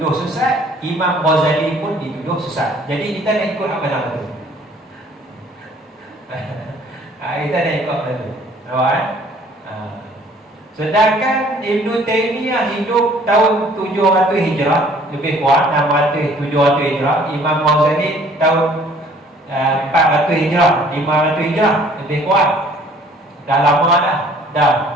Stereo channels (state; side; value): normal; both; correlation 0.56